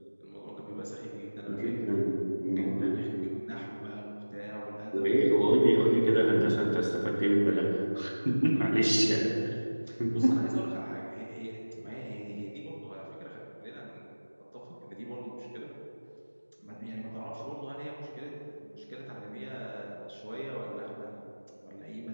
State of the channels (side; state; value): both; inverted; correlation -1.00